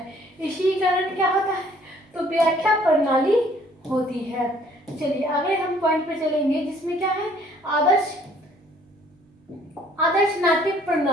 इसी कारण क्या होता है, तो व्याख्या प्रणाली होती है। चलिए अगले हम पॉइंट पे चलेंगे, जिसमें क्या है, आदर्श नाट्य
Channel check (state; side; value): normal; both; correlation 0.59